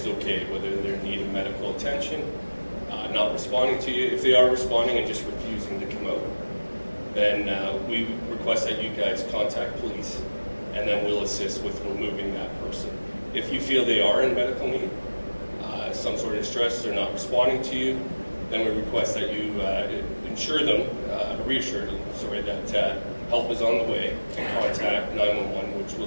okay, whether they're in need of medical attention, not responding to you. If they are responding and just refusing to come out, then we request that you guys contact police, and then we'll assist with removing that person. If you feel they are in medical need, some sort of distress, they're not responding to you, then we request that you reassure them, that help is on the way, and contact 911, which will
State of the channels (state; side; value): inverted; both; correlation -1.00